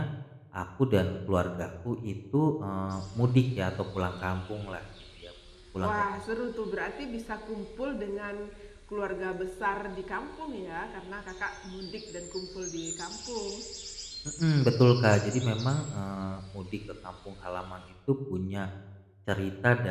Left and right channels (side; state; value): both; identical; correlation 1.00